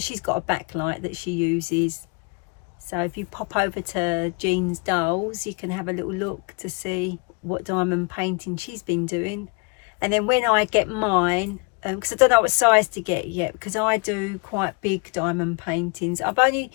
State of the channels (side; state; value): right; quieter; 32.0 dB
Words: got a backlight that she uses. So if you pop over to Jean's Dolls, you can have a little look to see what diamond painting she's been doing. And then when I get mine, because I don't know what size to get yet, because I do quite big diamond paintings. I've only